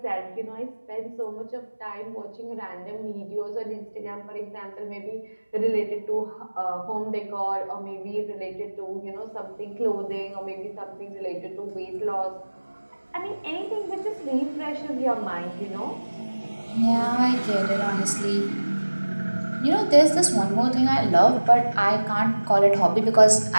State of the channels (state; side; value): inverted; both; correlation -1.00